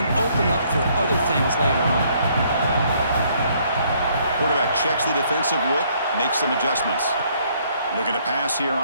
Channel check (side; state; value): both; inverted; correlation -0.66